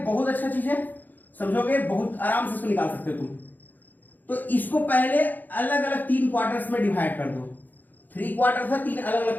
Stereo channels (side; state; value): right; late; 0.085 ms